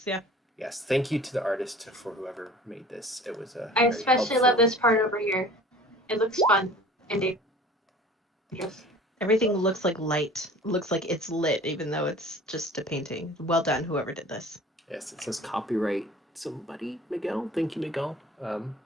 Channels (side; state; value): both; normal; correlation 0.45